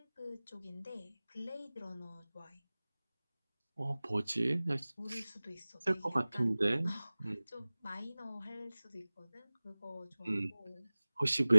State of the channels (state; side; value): inverted; both; correlation -0.99